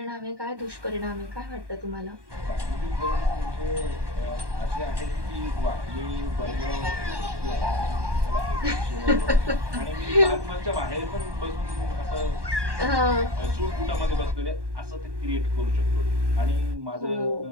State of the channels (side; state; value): left; late; 1.2 ms